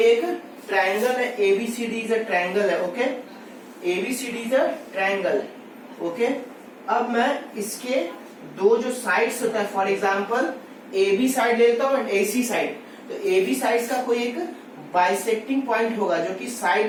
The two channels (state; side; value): identical; both; correlation 1.00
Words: एक triangle है, ABCD is a triangle है, okay, ABCD is a triangle है, ओके। अब मैं इसके दो जो साइड्स होता है, फॉर एग्जांपल AB साइड लेता हूँ एंड AC साइड, तो AB साइड का कोई एक बाइसेक्टिंग पॉइंट होगा जो कि